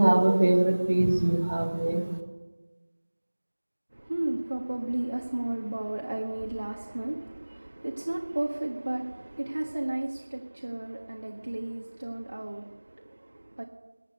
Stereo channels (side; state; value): both; inverted; correlation -1.00